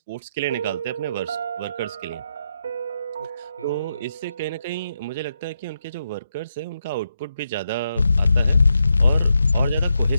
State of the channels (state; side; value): inverted; both; correlation -0.83